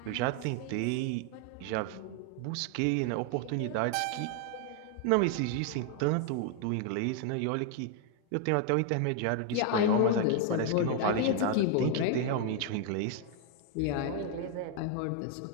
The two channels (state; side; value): different; both; correlation 0.00